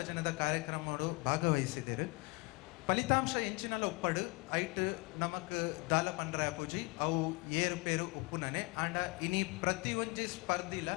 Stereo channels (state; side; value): quieter; right; 27.5 dB